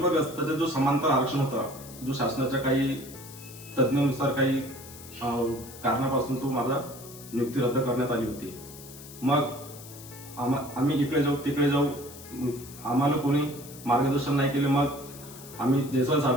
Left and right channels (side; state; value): left; noise; hiss, 16 dB below the sound